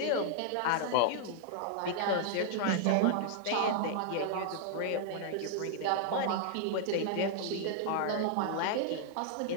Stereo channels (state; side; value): different; both; correlation -0.01